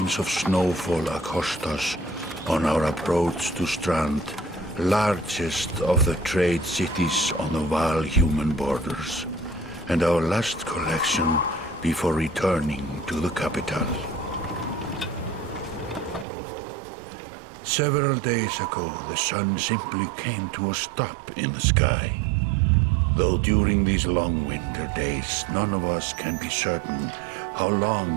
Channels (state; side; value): drops out; left; at 16.2 s